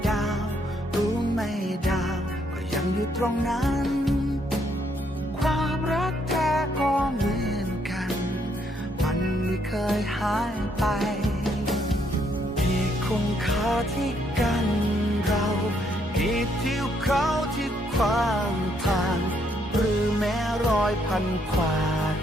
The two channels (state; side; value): normal; both; correlation 0.72